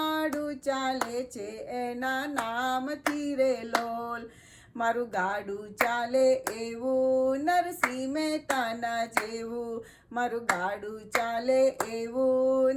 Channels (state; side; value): identical; both; correlation 1.00